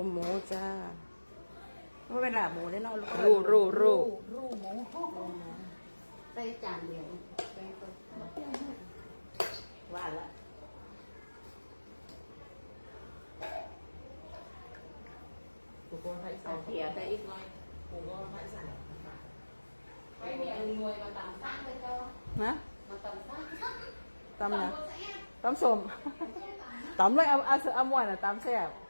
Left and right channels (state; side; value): inverted; both; correlation -1.00